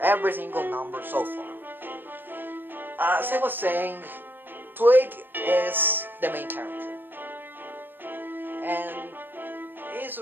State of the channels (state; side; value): late; left; 0.094 ms